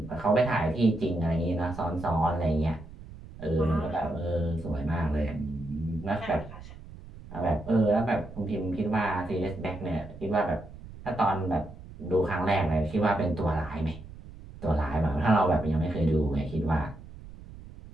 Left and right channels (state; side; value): noise; right; rumble, 16 dB below the sound